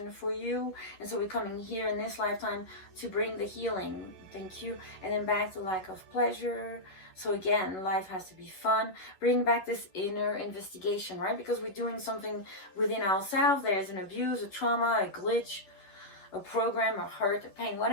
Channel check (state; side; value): late; right; 11 ms